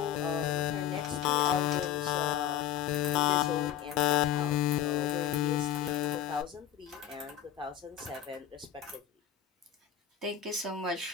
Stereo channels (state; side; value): quieter; right; 10.3 dB